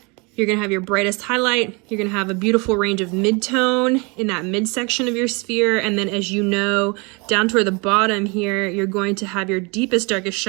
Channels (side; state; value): left; quieter; 29.7 dB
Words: you're gonna have your brightest highlight, you're gonna have a beautiful range of midtone in that midsection of your sphere, and then as you know, down toward the bottom here, you're going to have your deepest, darkest